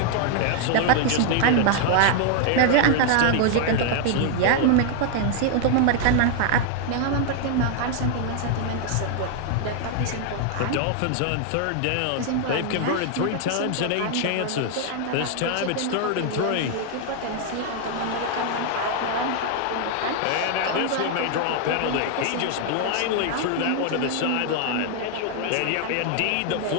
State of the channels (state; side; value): different; both; correlation 0.00